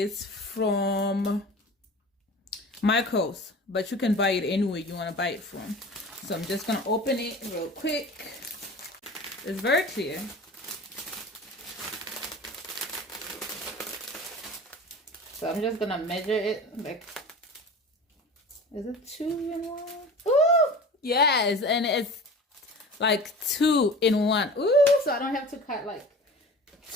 from Michaels, but you can buy it anywhere you want to buy it from. So I'm just gonna open it real quick. It's very clear. So I'm just gonna measure it like, is it 2 in 1? Ooh, yes, and it's like 2 in 1. Ooh, so I don't have to cut like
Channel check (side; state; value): both; normal; correlation 0.38